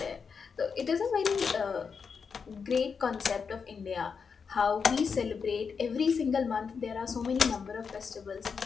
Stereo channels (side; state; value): right; quieter; 5.8 dB